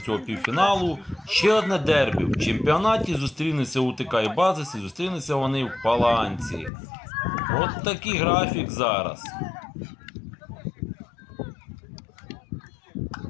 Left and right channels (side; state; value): right; drops out; at 6.7 s